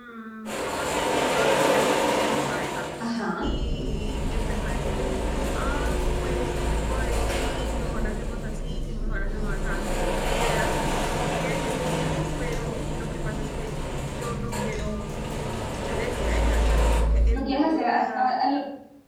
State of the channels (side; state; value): both; identical; correlation 1.00